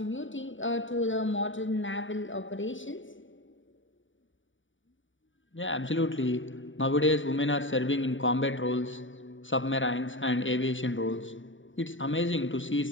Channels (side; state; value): right; late; 0.56 ms